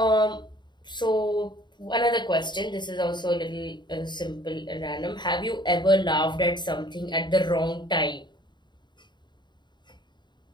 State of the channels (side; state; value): right; late; 0.22 ms